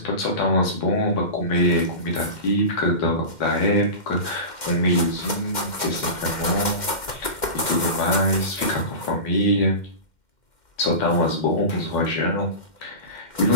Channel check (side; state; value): right; late; 2.1 ms